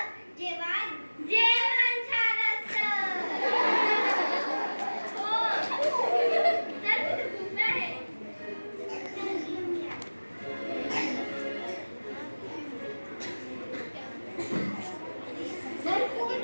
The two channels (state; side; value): inverted; both; correlation -1.00